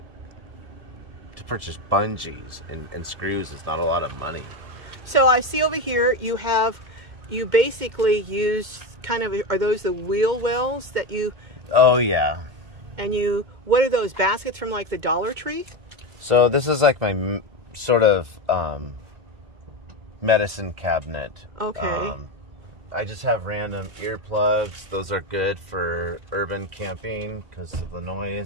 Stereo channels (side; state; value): left; late; 2.1 ms